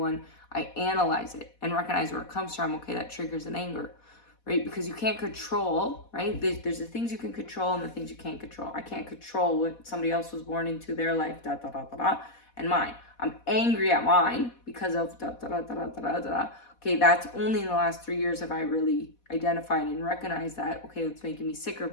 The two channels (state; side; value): late; right; 4.1 ms